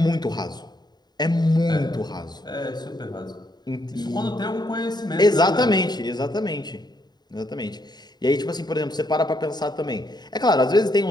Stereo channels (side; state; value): right; late; 0.20 ms